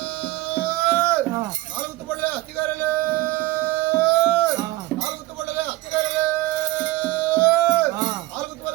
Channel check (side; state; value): left; quieter; 18.4 dB